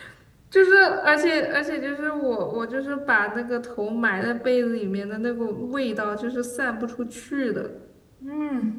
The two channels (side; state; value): both; identical; correlation 1.00